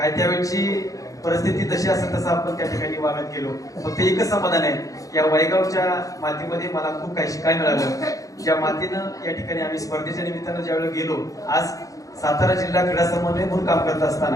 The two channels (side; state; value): right; late; 0.17 ms